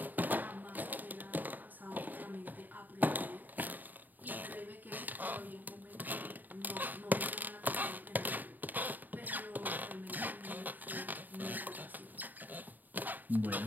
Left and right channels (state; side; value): late; left; 0.087 ms